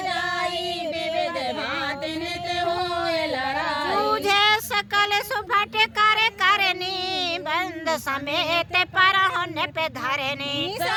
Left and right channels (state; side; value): identical; both; correlation 1.00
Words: विविध भांति नित होए लड़ाई तुझे सकल सुभट कर करनी बंद समेत पर होने पे धरनी